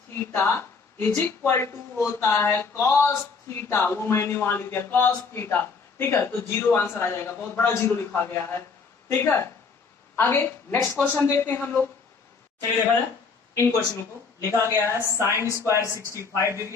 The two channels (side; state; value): right; quieter; 5.0 dB